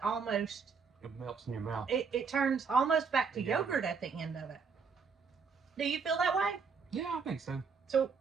almost, it melts in your mouth. it turns almost back to Yeah. yogurt at the end of it. Do you feel that way? Yeah, I think so. So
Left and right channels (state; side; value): quieter; left; 5.5 dB